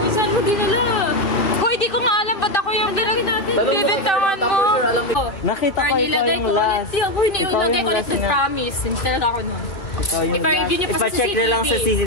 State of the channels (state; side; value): late; right; 2.3 ms